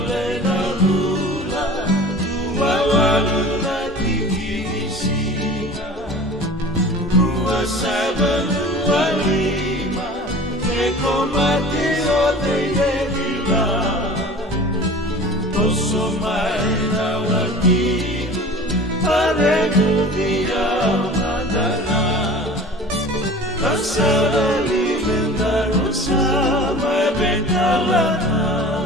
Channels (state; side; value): normal; both; correlation 0.41